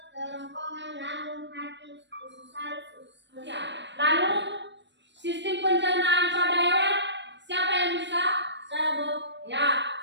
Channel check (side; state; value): left; late; 0.52 ms